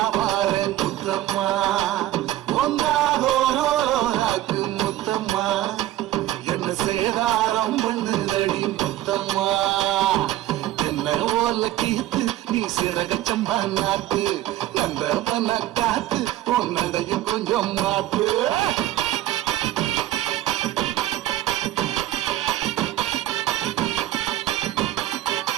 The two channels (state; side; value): quieter; left; 14.3 dB